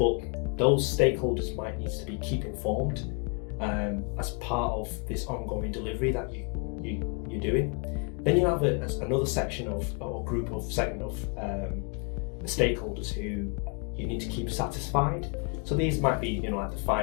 those stakeholders might need to be keep informed as part of this ongoing delivery that you're doing. Then you have another section of, or segment of stakeholders who you need to keep satisfied. So these might be, like the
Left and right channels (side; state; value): right; quieter; 35.6 dB